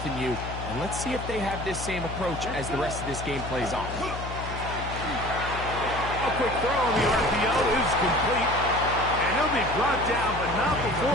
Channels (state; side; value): noise; left; hum, 8 dB below the sound